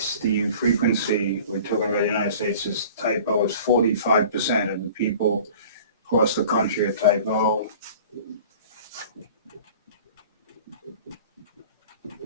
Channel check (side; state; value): both; inverted; correlation -0.44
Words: the frequency, we're talking about the United States, is type O is 45% of the people across the country are type O.